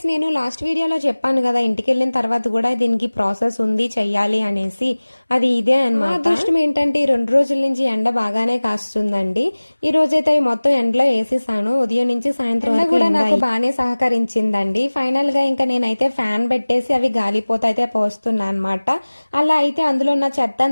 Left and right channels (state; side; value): inverted; both; correlation -1.00